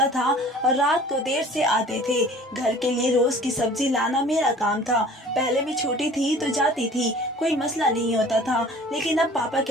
था और रात को देर से आते थे। घर के लिए रोज की सब्जी लाना मेरा काम था। पहले मैं छोटी थी तो जाती थी, कोई मसला नहीं होता था, लेकिन अब पापा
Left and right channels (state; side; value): normal; both; correlation 0.47